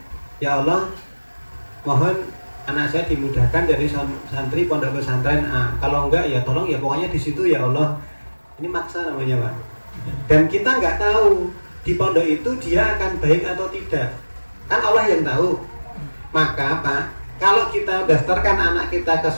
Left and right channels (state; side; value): inverted; both; correlation -1.00